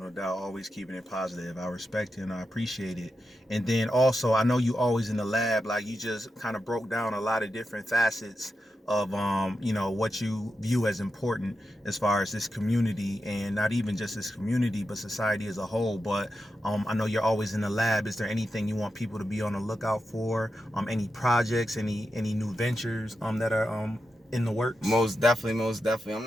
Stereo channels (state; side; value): normal; both; correlation 0.88